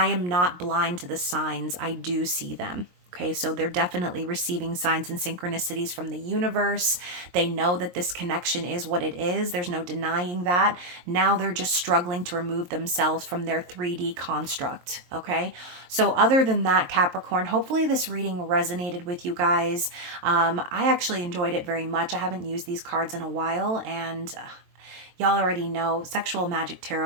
am not blind to the signs. I do see them. Okay, so they're definitely receiving signs and synchronicities from the universe. They know that this connection is what it is. There's no denying that. Now they're just struggling to remove themselves from their 3D construct. Okay, so other than that, Capricorn, hopefully this reading resonated with you guys. I actually enjoyed it very much. I haven't used these cards in a while, and y'all already know Sexual Magic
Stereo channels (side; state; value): left; late; 23 ms